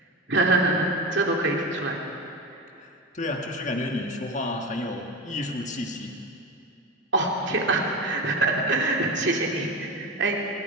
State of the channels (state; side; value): normal; both; correlation 0.23